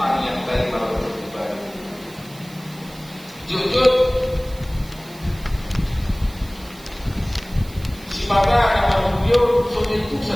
dari para pribadi. Jujur si pada nama beliau sudah itu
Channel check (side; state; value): right; noise; hiss, 21 dB below the sound